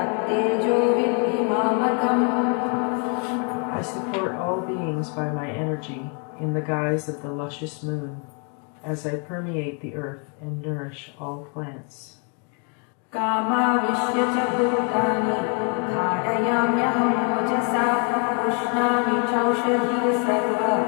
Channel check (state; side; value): quieter; right; 36.7 dB